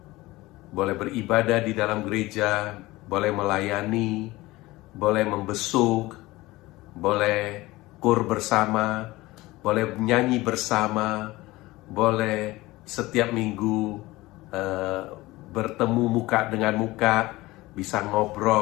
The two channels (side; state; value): right; quieter; 19.5 dB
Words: boleh beribadah di dalam gereja, boleh melayani, boleh membesuk, boleh kur bersama, boleh nyanyi bersama, boleh setiap minggu bertemu muka dengan muka, bisa